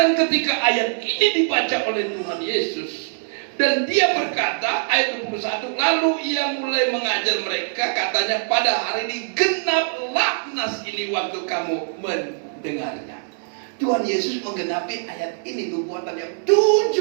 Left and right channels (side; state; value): left; silent; digital silence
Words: ketika ayat ini dibaca oleh Tuhan Yesus, dan Dia berkata, ayat 21, lalu Ia mulai mengajar mereka, katanya, pada hari ini genaplah nas ini waktu kamu mendengarnya. Tuhan Yesus menggenapi ayat ini, nubuatan yang